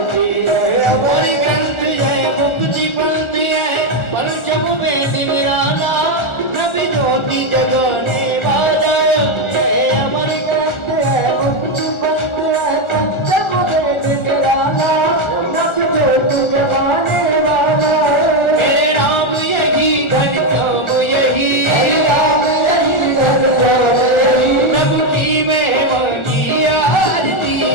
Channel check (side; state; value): right; late; 1.4 ms